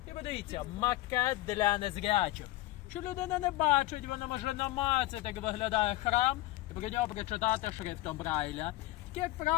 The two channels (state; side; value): quieter; right; 17.4 dB